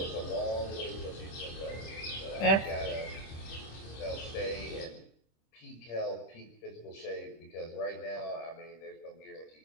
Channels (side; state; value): right; late; 26 ms